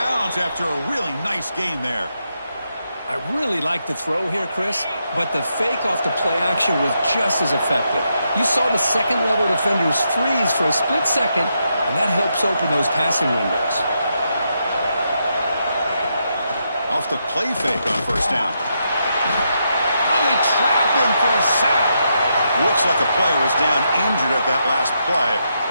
after a really nice gain there. I really like the throw here, Chris, but the fake off the play action was just as effective. You saw the second-level defenders freeze for a split second, and that helps open those passing windows. Off the play fake on first down. Oh, they trap him for a sack. Looks like a player is down injured at that last play.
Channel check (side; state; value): both; inverted; correlation -0.81